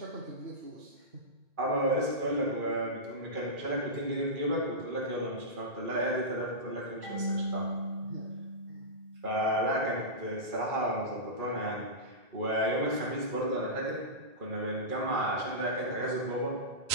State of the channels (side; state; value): left; late; 2.4 ms